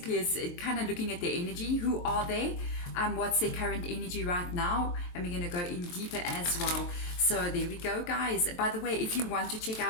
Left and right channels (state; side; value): late; right; 23 ms